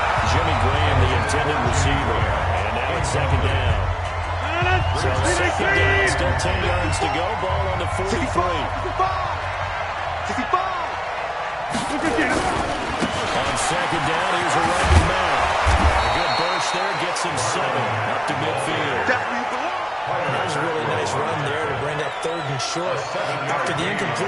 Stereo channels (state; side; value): identical; both; correlation 1.00